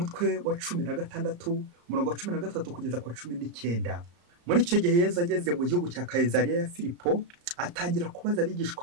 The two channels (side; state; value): left; late; 34 ms